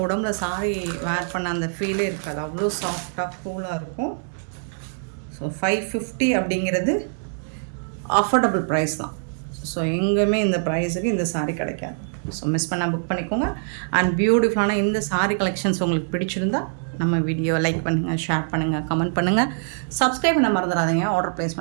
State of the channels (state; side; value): silent; left; digital silence